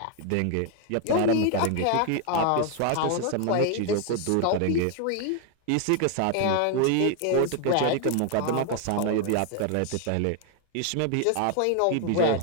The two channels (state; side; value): different; both; correlation 0.00